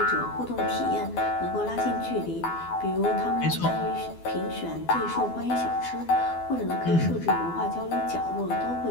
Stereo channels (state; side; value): late; right; 12 ms